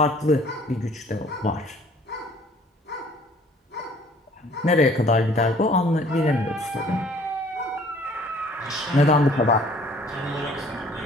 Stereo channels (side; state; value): both; normal; correlation 0.55